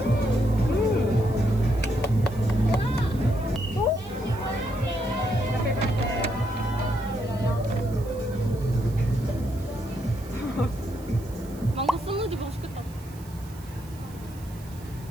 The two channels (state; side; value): noise; right; hiss, 22 dB below the sound